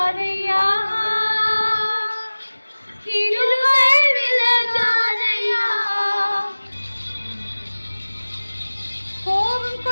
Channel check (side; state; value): both; inverted; correlation -1.00